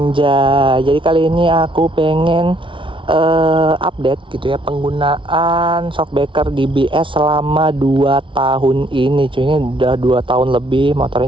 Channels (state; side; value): late; left; 0.25 ms